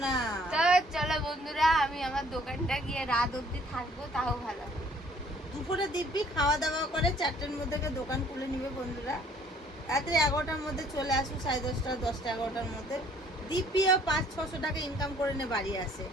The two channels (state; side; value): normal; both; correlation 0.59